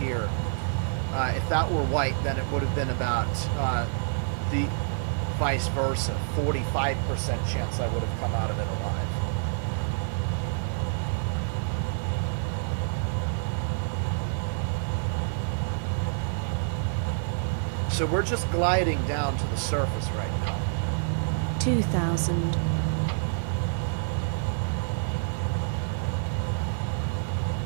If that were white, then it would have been about the vice versa, 45% chance I would have come out of it alive. So we're just gliding down to the surface right now. 2,000.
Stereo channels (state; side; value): silent; left; 57 dB below the other